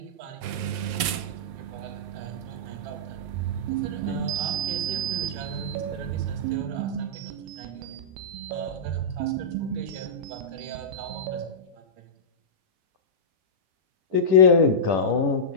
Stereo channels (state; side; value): late; left; 11 ms